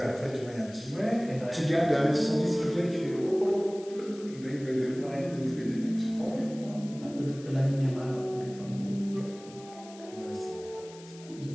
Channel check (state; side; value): noise; left; hiss, 20 dB below the sound